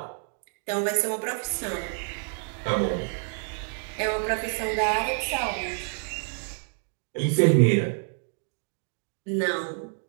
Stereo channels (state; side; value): silent; left; 59 dB below the other